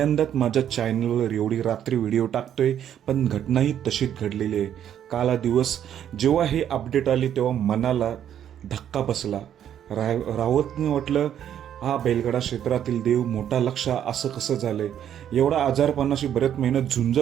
माझ्या चॅनलवर एवढी रात्री व्हिडिओ टाकतोय, पण घटनाही तशीच घडलेली आहे. काला दिवस जेव्हा हे अपडेट आली तेव्हा मनाला धक्का बसला. रावतने म्हटलं, हा बेलगडा क्षेत्रातील देव मोठा लक्षा असं कसं झालंय. एवढा आजारपणाशी बरेच मेहनत झुंज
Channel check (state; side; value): quieter; left; 9.9 dB